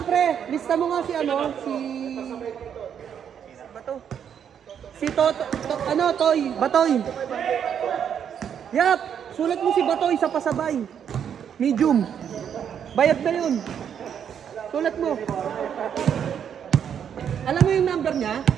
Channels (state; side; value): quieter; left; 8.4 dB